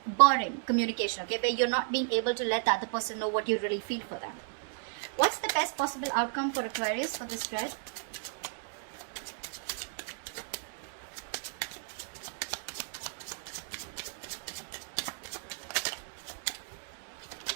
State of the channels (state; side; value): silent; left; 55 dB below the other